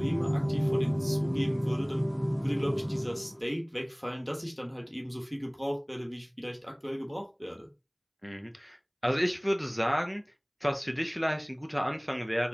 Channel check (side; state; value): both; identical; correlation 1.00